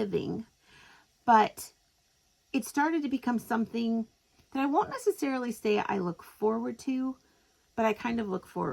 but it started to become something that I won't necessarily say I look forward to, but I kind of look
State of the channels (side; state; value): both; identical; correlation 1.00